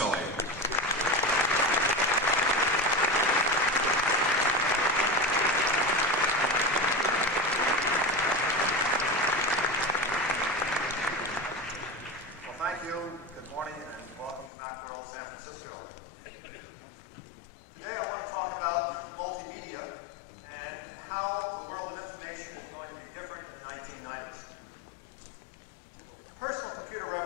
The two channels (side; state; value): right; drops out; at 14.5 s